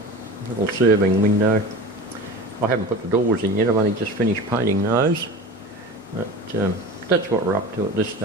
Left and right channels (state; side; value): normal; both; correlation 0.33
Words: little serving window. I haven't put the doors in yet, I've only just finished painting those. But that's what we're up to at this